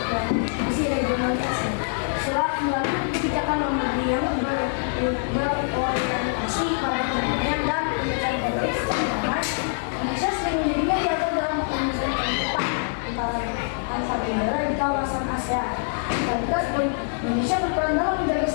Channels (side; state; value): right; silent; digital silence